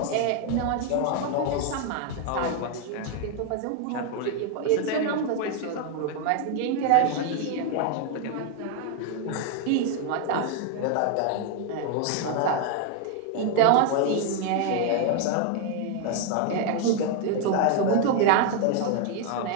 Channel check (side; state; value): both; different; correlation 0.00